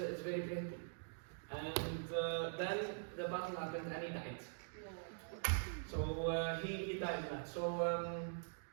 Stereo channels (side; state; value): left; silent; digital silence